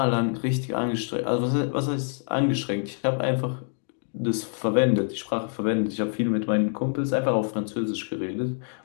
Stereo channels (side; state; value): right; silent; 57 dB below the other